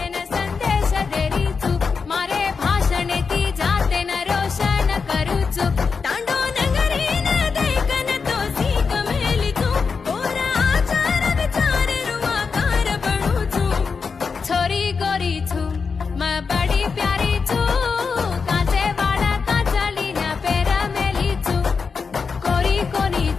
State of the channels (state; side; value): quieter; right; 5.3 dB